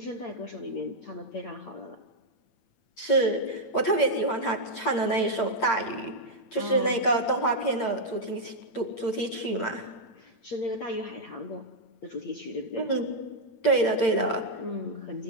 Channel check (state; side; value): late; right; 8.8 ms